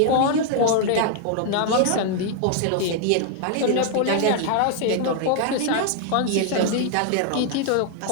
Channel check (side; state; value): both; different; correlation 0.00